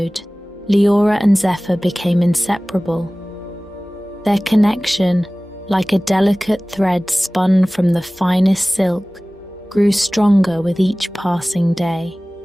Liora and Zephyr became inseparable. Their connection, like a delicate thread spun from the finest silk, grew stronger with each passing day.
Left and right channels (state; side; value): normal; both; correlation 0.98